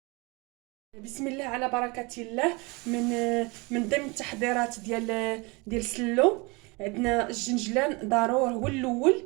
بسم الله على بركة الله. من ضمن التحضيرات ديال السلو، عندنا الجنجلان ضروري.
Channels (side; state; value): left; quieter; 27.2 dB